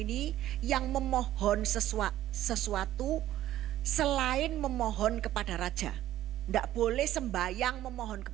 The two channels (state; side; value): quieter; left; 13.5 dB